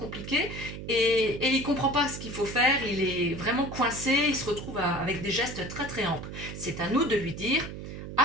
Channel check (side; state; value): right; noise; hum, 9 dB below the sound